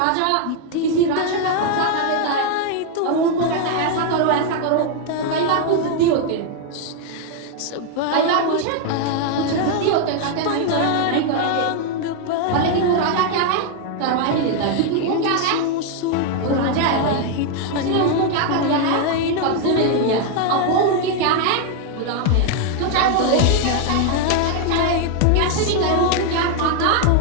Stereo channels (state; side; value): different; both; correlation 0.00